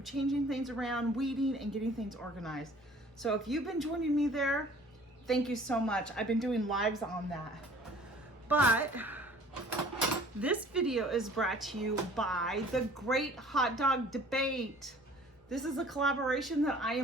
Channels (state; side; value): normal; both; correlation 0.51